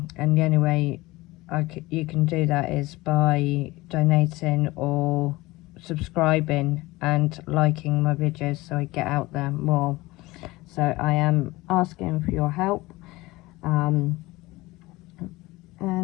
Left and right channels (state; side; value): quieter; right; 20.3 dB